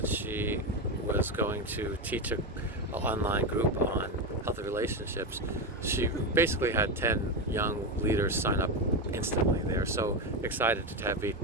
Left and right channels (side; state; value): both; normal; correlation 0.14